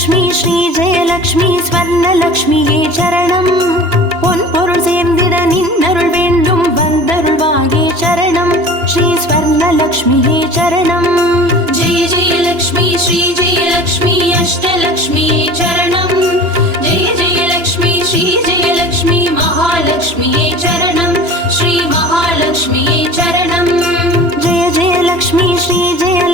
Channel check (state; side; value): late; left; 2.9 ms